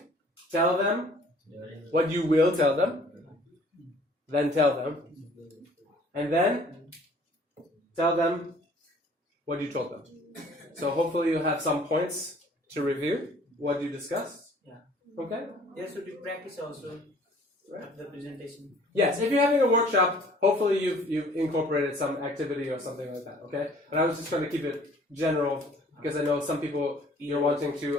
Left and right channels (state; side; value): normal; both; correlation 0.54